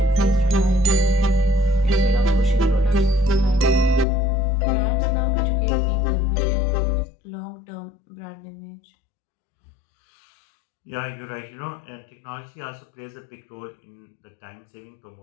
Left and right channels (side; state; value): right; drops out; at 4.0 s